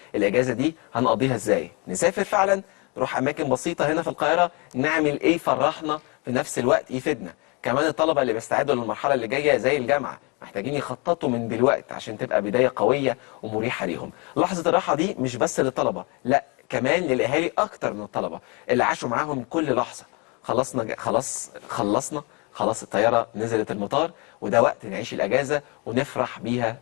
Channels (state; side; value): quieter; right; 30.6 dB